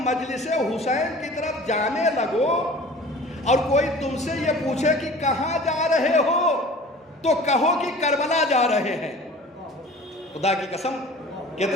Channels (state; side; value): normal; both; correlation 0.43